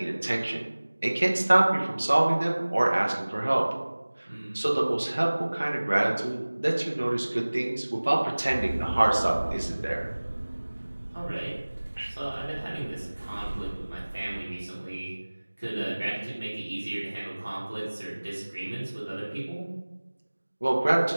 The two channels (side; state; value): both; inverted; correlation -1.00